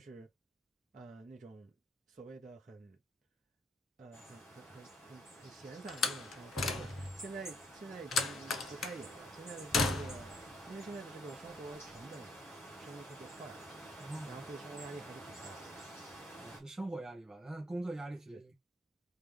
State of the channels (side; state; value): both; normal; correlation 0.70